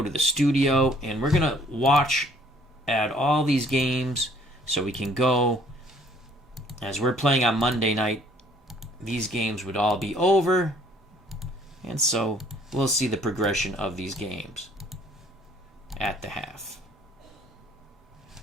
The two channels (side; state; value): both; normal; correlation 0.59